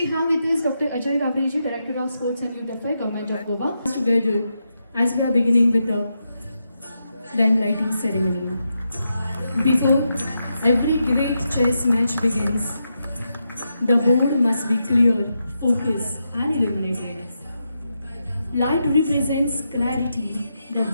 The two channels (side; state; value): both; inverted; correlation -0.85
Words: have with us Dr. Ajay Gavreji, Director of Sports and Youth Affairs, Government of Goa. Together, as we are beginning with the then lighting ceremony. Before every great chess match begins, the board must be clear, focused, and illuminated. Light represents clarity, the